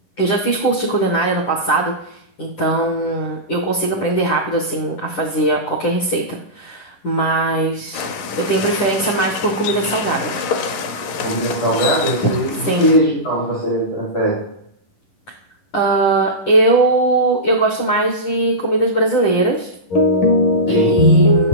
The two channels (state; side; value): late; right; 11 ms